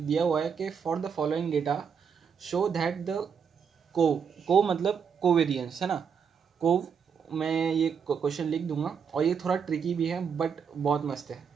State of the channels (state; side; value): quieter; left; 6.7 dB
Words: हुआ है कि for the following data show that the को मतलब कोवेरियंस, है ना। को मैं ये क्वेश्चन लिख दूंगा, और ये थोड़ा ट्रिकी भी है बट बहुत मस्त है।